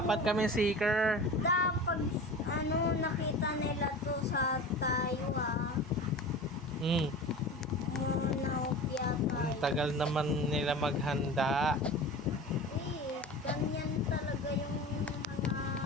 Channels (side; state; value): both; normal; correlation 0.34